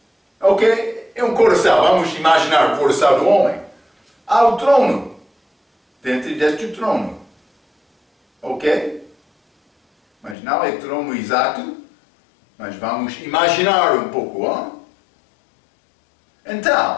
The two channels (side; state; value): right; drops out; at 10.4 s